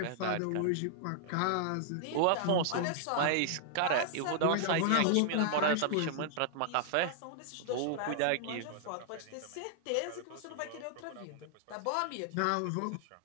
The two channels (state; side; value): different; both; correlation -0.01